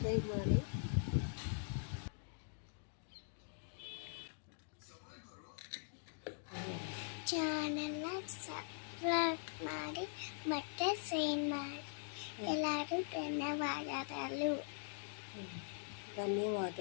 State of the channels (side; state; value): right; silent; digital silence